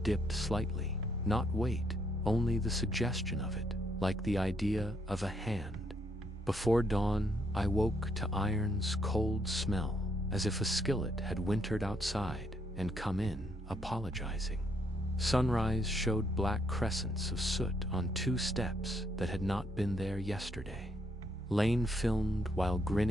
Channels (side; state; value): both; normal; correlation 0.73